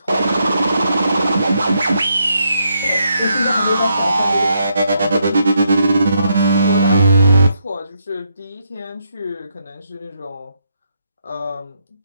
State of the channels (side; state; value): both; inverted; correlation -0.78